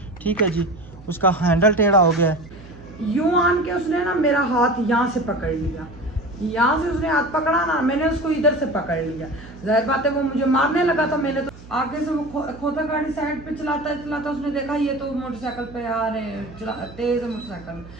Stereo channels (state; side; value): noise; right; hum, 19 dB below the sound